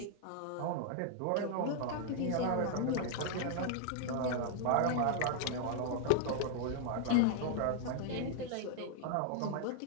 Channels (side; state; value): both; different; correlation 0.00